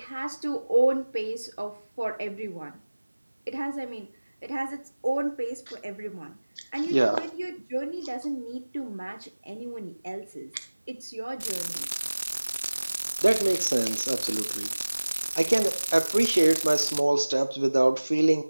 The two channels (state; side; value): inverted; both; correlation -1.00